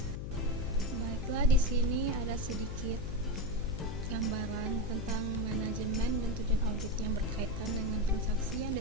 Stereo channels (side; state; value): left; noise; hum, 5 dB below the sound